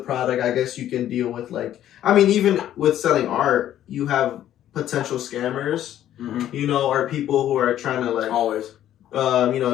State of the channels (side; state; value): right; quieter; 11.8 dB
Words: product, I guess you can deal with like, I mean, even with selling art, you have potential scammers. You know, or people who are trying to like always, you